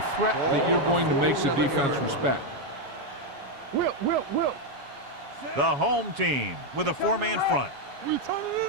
threat that you're going to make the defense respect. Will. The home team with a 4-man front. We turning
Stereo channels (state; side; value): late; left; 7.2 ms